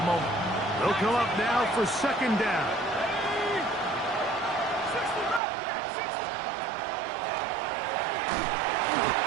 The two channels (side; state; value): left; drops out; at 5.4 s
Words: moment. They'll come up now for 2nd down.